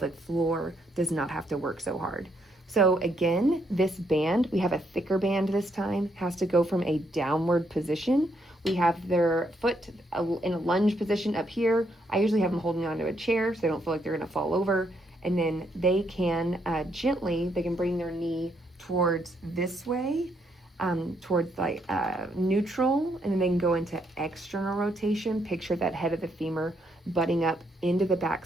floor, does not have to work so hard. So again, this band, we have a thicker band this time, has to go from a downward position. We have their foot in a lunge position up here. I usually have them holding onto a chair so they don't feel like they're gonna fall over. And then they can gently, they can bring their knee towards this way, towards like neutral, and then they can go into external rotation. Picture that head of the femur butting up into the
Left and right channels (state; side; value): normal; both; correlation 0.74